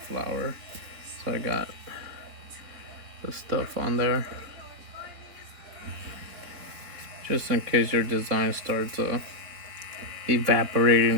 flower. So I got the stuff on there. Just in case your design starts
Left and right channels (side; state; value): left; late; 4.3 ms